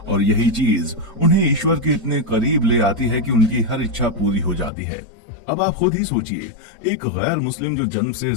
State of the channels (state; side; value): drops out; right; at 4.7 s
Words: और यही चीज उन्हें ईश्वर के इतने करीब ले आती है कि उनकी हर इच्छा पूरी हो जाती है। अब आप खुद ही सोचिए, एक गैर मुस्लिम जो जन्म से